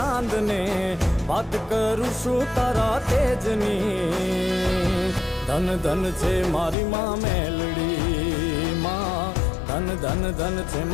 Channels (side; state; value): right; drops out; at 6.8 s